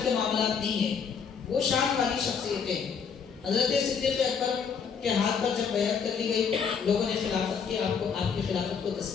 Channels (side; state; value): right; quieter; 6.4 dB